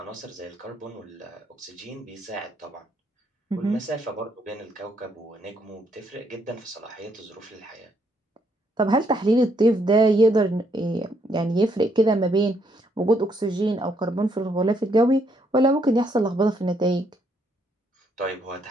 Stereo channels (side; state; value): both; normal; correlation 0.73